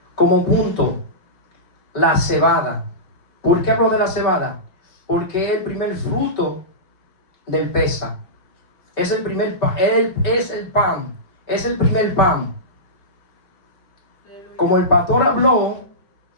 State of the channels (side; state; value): right; late; 5.3 ms